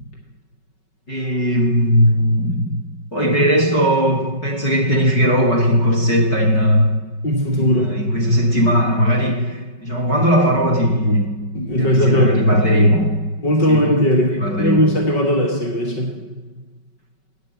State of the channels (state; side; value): late; right; 5.3 ms